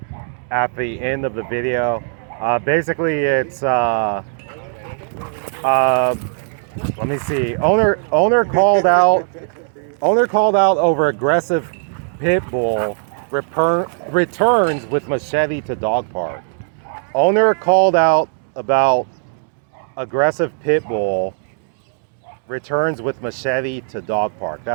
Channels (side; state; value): left; silent; digital silence